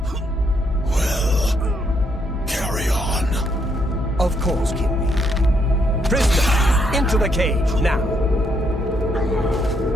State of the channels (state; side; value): normal; both; correlation 0.74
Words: Well, carry on. Of course, Kinreeve. Prisoner, into the cage, now.